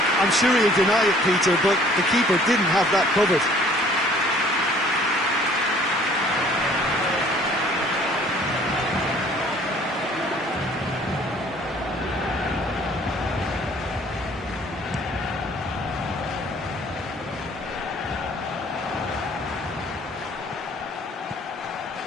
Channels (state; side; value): normal; both; correlation 0.55